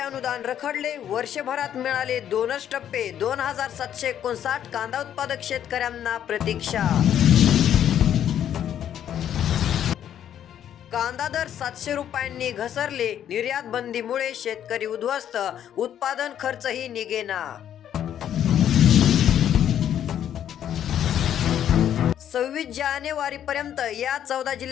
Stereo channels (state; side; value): quieter; right; 10.2 dB